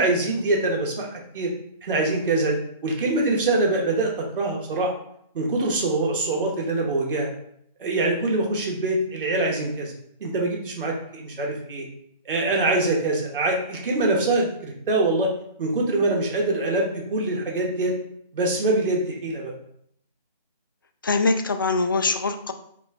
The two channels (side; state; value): both; inverted; correlation -0.34